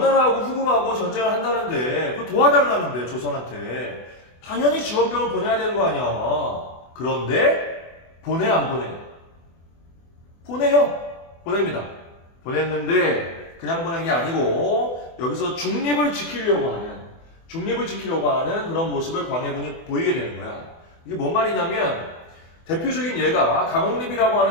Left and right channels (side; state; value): right; late; 24 ms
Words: 후금하고 전쟁을 한다는데 그거 도와달라는데 조선한테 당연히 지원병을 보내야 되는 거 아니야. 그런데 보내 안 보내? 보내요. 보냅니다. 보냈는데 그냥 보낸 게 아니고 여기서 중립을 지키려고 하는 그런 모습을 광해군이 보이게 되는 거야. 이게 뭔 말이냐면 대표적인 예가 강홍립이라고